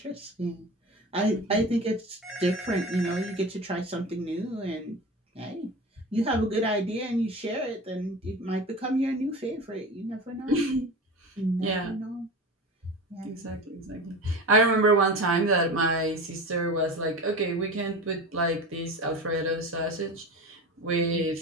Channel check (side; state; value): both; normal; correlation 0.31